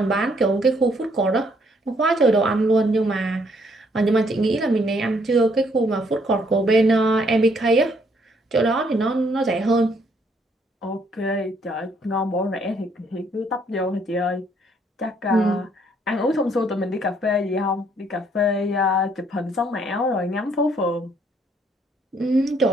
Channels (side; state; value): both; normal; correlation 0.68